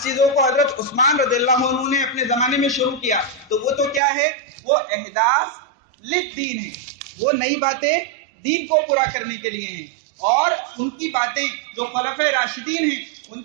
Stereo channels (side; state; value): left; drops out; at 4.0 s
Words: چیزوں کو حضرت عثمان رضی اللہ عنہ نے اپنے زمانے میں شروع کیا, تو وہ تو کیا ہے, وہ احداث للدین ہے, وہ نئی باتیں دین کو پورا کرنے کے لیے ہیں. اور ان کی باتیں جو خلفائے راشدین ہیں ان